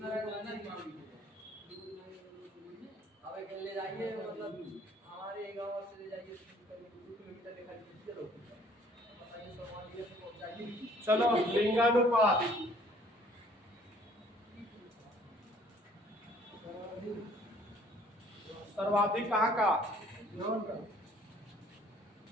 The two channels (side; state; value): both; normal; correlation 0.58